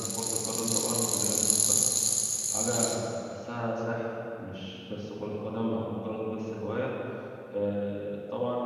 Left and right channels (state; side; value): identical; both; correlation 1.00